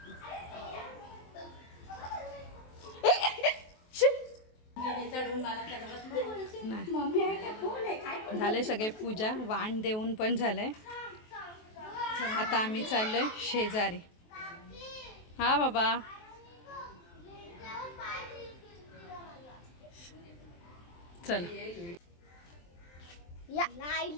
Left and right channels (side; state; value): right; late; 23 ms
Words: झाले सगळे पूजा वाण देऊन पण झालंय आता आम्ही चाललोय शेजारी हा बाबा चल या